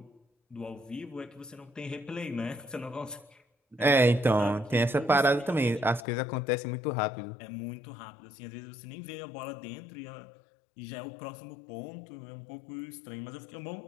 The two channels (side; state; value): right; drops out; at 6.1 s